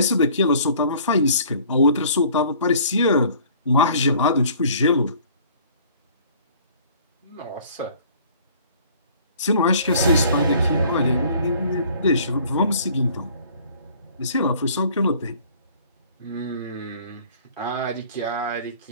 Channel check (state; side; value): inverted; both; correlation -0.53